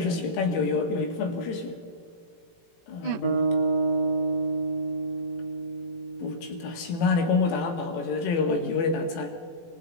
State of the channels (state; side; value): late; right; 18 ms